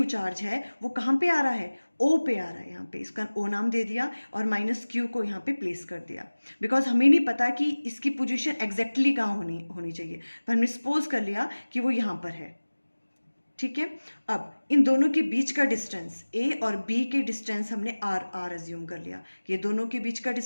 चार्ज है वो कहाँ पे आ रहा है, ओ पे आ रहा है। यहाँ पे इसका ओ नाम दे दिया और माइनस क्यू को यहाँ पे प्लेस कर दिया, बिकॉज हमें नहीं पता कि इसकी पोजीशन एग्जैक्टली कहाँ होनी चाहिए, पर हमने सपोज कर लिया कि वो यहाँ पर है। ठीक है। अब इन दोनों के बीच का डिस्टेंस, ए और बी के डिस्टेंस हमने आर अज्यूम कर लिया। ये दोनों के बीच का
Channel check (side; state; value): both; inverted; correlation -1.00